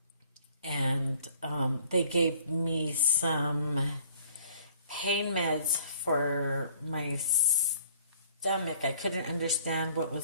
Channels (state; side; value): inverted; both; correlation -0.56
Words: and they gave me some pain meds for my stomach. I couldn't understand what